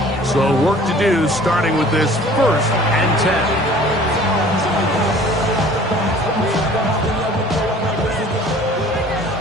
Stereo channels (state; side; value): normal; both; correlation 0.49